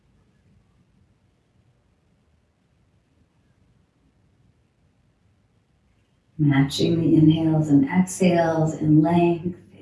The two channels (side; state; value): both; identical; correlation 1.00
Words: Matching the inhales and exhales in length,